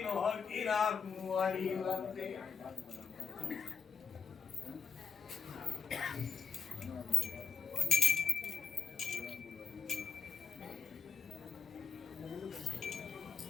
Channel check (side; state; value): right; quieter; 5.7 dB